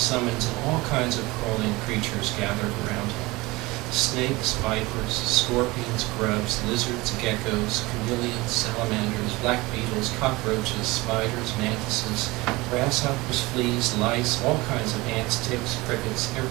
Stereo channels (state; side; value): quieter; left; 21.9 dB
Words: and all kinds of crawling creatures gathered around him. Snakes, vipers, scorpions, grubs, lizards, geckos, chameleons, salamanders, black beetles, cockroaches, spiders, mantises, grasshoppers, fleas, lice, all kinds of ants, ticks, crickets,